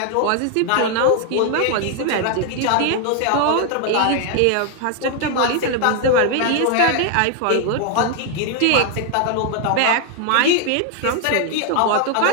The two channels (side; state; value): both; different; correlation 0.00